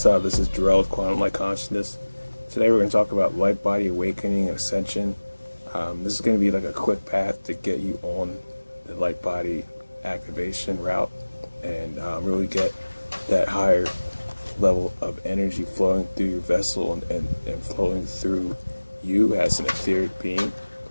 up? This is Jarrell with Quantum Light Consciousness. Today we're going to talk about Lightbody, awakening, and ascension. This is going to be like a quick path to get you on the Lightbody activation route and really get that higher level of energy flowing through your vessel and flowing through you as an etheric being,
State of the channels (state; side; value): inverted; both; correlation -1.00